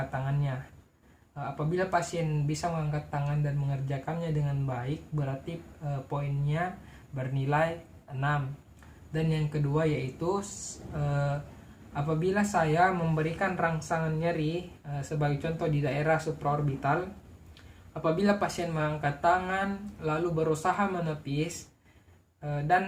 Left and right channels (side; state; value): both; identical; correlation 1.00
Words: tangannya. Apabila pasien bisa mengangkat tangan dan mengerjakannya dengan baik, berarti poinnya bernilai 6. Dan yang kedua yaitu apabila saya memberikan rangsangan nyeri, sebagai contoh di daerah supraorbital, apabila pasien mengangkat tangan lalu berusaha menepis,